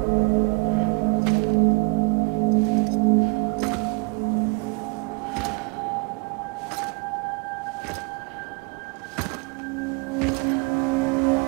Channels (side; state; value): left; quieter; 31.0 dB